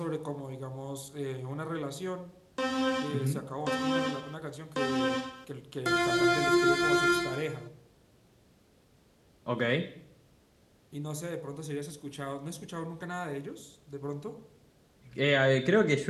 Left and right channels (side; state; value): both; identical; correlation 1.00